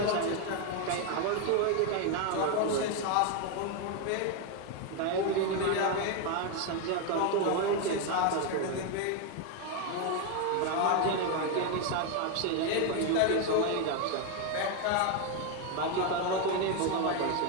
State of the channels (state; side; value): different; both; correlation 0.01